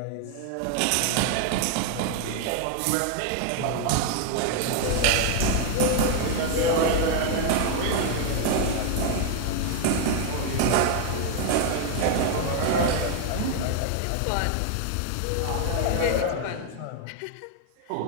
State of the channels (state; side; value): different; both; correlation 0.00